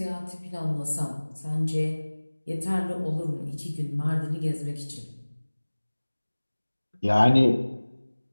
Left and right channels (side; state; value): both; inverted; correlation -1.00